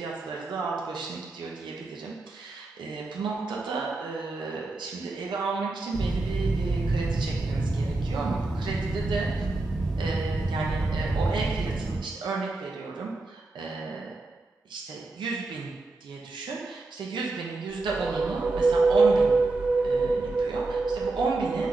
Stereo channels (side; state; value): left; quieter; 3.2 dB